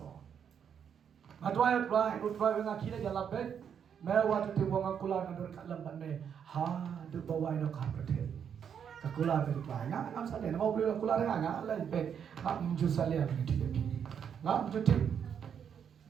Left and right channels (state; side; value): quieter; left; 7.9 dB